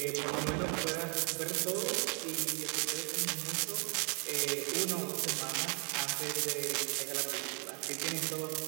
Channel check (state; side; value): quieter; left; 38.7 dB